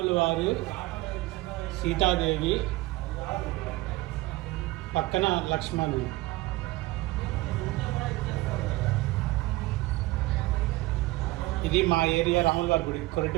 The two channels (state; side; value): quieter; left; 19.9 dB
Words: వారు, సీతాదేవి, పక్కన లక్ష్మణుడు. ఇది మా ఏరియా రాముల వారి గుడి,